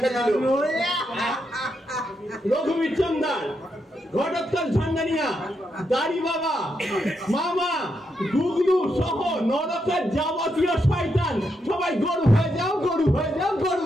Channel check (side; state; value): both; normal; correlation 0.82